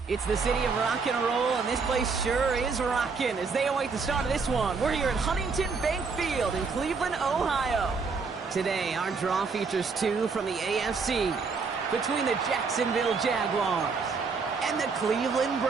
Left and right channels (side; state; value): left; quieter; 4.9 dB